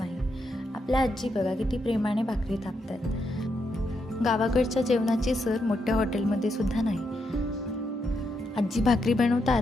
आपल्या आजी बघा किती प्रेमाने भाकरी थापतात. गावाकडच्या जेवणाची सर मोठ्या हॉटेलमध्ये सुद्धा नाही. आजी भाकरी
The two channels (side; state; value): both; normal; correlation 0.81